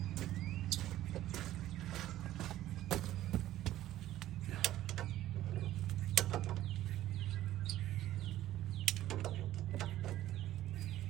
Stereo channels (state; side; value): quieter; left; 13.8 dB